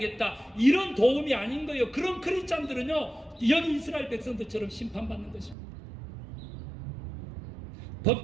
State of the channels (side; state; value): left; drops out; at 5.6 s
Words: 이런 도움이 아닌 거예요. 그런 크리스찬들은요, 여기 이스라엘 백성들처럼 심판받는 것입니다.